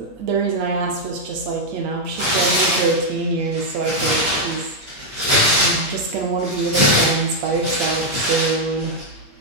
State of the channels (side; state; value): left; late; 8.6 ms